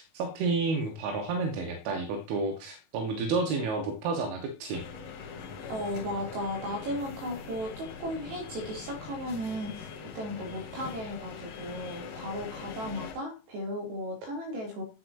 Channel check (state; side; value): late; left; 18 ms